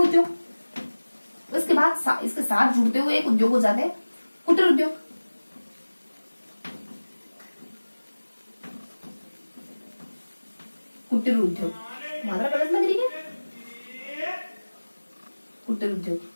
उद्योग। उसके बाद इसके साथ जुड़ते हुए एक उद्योग हो जाते हैं कुटीर उद्योग। कुटीर उद्योग, मात्रा गलत लग रही है, कुटीर उद्योग,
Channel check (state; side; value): inverted; both; correlation -1.00